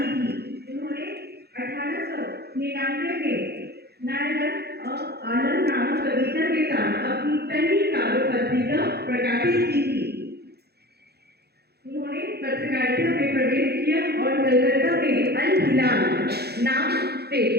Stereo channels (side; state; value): left; late; 0.47 ms